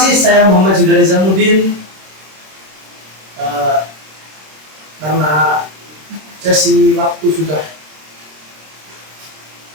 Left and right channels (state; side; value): late; left; 26 ms